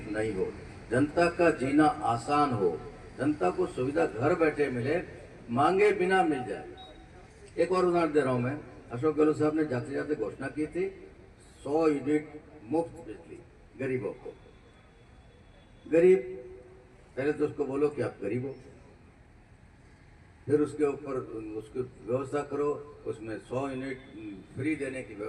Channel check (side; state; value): both; identical; correlation 1.00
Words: नहीं हो, जनता का जीना आसान हो, जनता को सुविधा घर बैठे मिले, मांगे बिना मिल जाए। एक और उदाहरण दे रहा हूं मैं। अशोक गहलोत साहब ने जाते जाते घोषणा की थी 100 यूनिट मुफ्त बिजली गरीबों को। गरीब, पहले तो उसको बोलो कि आप गरीब हो, फिर उसके ऊपर उसकी व्यवस्था करो, उसमें 100 यूनिट फ्री देने की